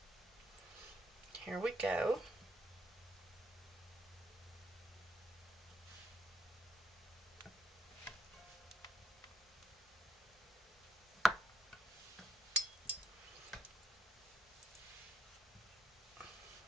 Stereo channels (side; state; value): both; normal; correlation 0.74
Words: here we go.